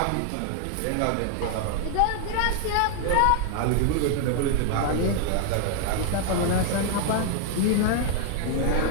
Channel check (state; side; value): different; both; correlation 0.00